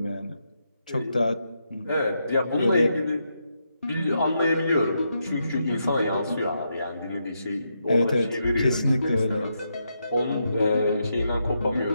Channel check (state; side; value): inverted; both; correlation -0.82